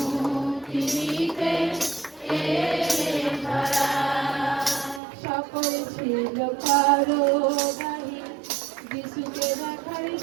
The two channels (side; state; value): left; drops out; at 5.0 s